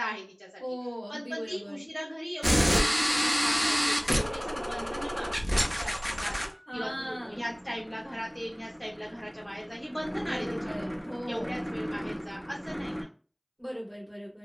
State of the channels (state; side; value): identical; both; correlation 1.00